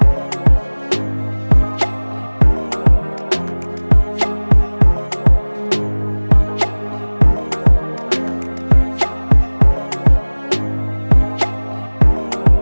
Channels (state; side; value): inverted; both; correlation -1.00